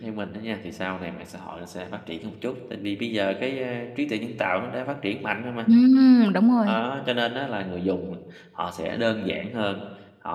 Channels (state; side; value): identical; both; correlation 1.00